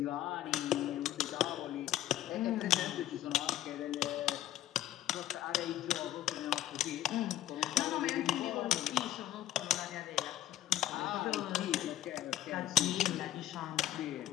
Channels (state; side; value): quieter; right; 12.8 dB